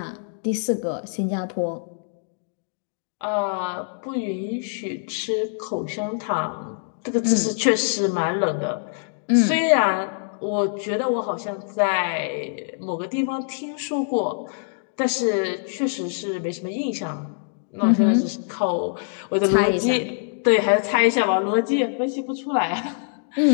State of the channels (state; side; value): silent; right; digital silence